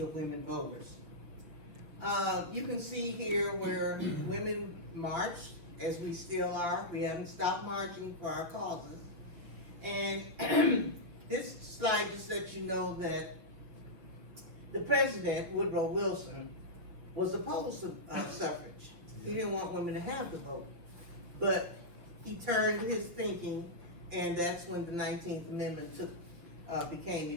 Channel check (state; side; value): late; left; 6.3 ms